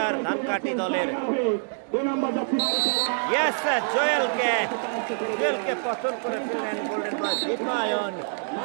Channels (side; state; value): left; silent; digital silence